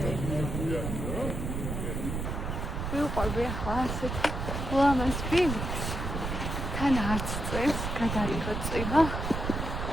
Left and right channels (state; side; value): noise; right; rumble, 3 dB below the sound